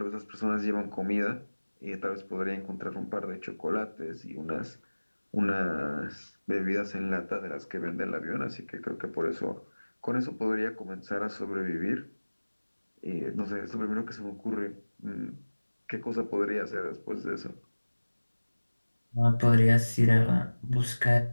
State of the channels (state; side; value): inverted; both; correlation -1.00